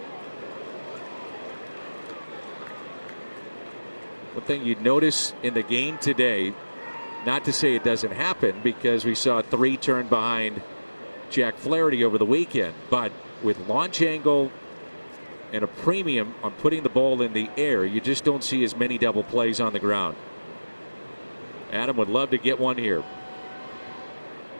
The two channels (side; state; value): both; inverted; correlation -1.00